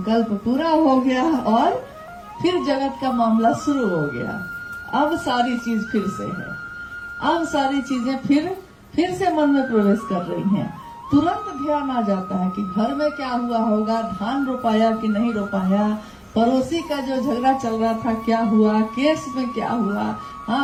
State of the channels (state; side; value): identical; both; correlation 1.00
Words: पूरा हो गया और फिर जगत का मामला शुरू हो गया। अब सारी चीज फिर से है, अब सारी चीजें फिर से मन में प्रवेश कर रही हैं। तुरंत ध्यान आ जाता है कि घर में क्या हुआ होगा, धान रोपाया कि नहीं रोपाया, पड़ोसी का जो झगड़ा चल रहा था क्या हुआ, केस में क्या हुआ,